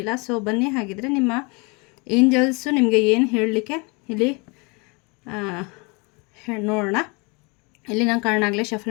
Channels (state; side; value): quieter; right; 29.6 dB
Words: ಸೊ ಬನ್ನಿ, ಹಾಗಿದ್ರೆ ನಿಮ್ಮ ಏಂಜಲ್ಸು ನಿಮಗೆ ಏನು ಹೇಳಲಿಕ್ಕೆ ಇಲ್ಲಿ ನೋಡೋಣ. ಇಲ್ಲಿ ನಾನು ಕಾರಣಾಗಲೇ